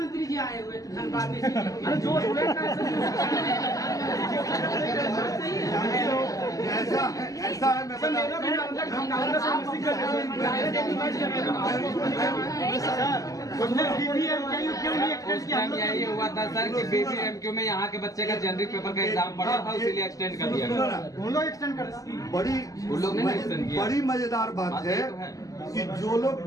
जी आए हुए थे धनबाद में। अरे जो स्टूडेंट का ऐसा है मैं सर बता मेरा भी हम नालंदा से मिसिंग कर रहे उस टाइम यही हुआ था सर कि BBMKU में यहाँ के बच्चे का जेनरिक पेपर का एग्जाम पड़ा था, इसीलिए एक्सटेंड कर दिया गया। उन लोग एक्सटेंड कर उन लोग ने extend किया। बड़ी मजेदार बात बात है ये तो है। कि जो लोग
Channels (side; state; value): right; late; 0.17 ms